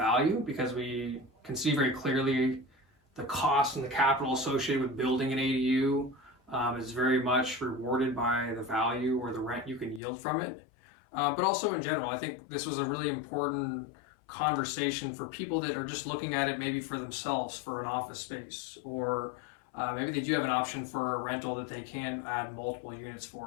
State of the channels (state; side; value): drops out; right; at 10.0 s